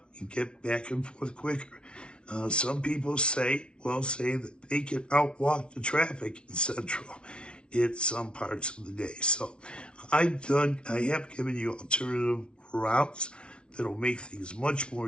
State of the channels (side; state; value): right; late; 0.057 ms